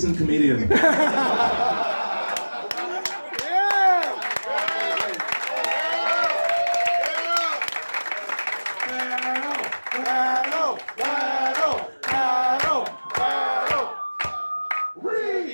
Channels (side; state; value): both; inverted; correlation -1.00